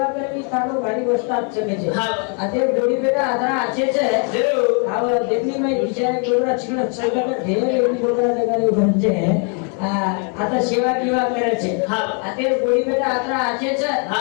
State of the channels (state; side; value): quieter; right; 39.6 dB